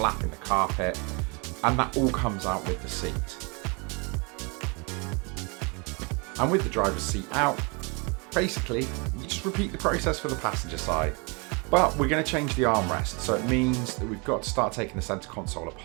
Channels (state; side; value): quieter; left; 31.3 dB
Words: in the carpet, and that all comes out with the seat. And with the driver's seat out, basically you just repeat the process for the passenger side. But we're going to change the armrest, so it means that we've got to start taking the center console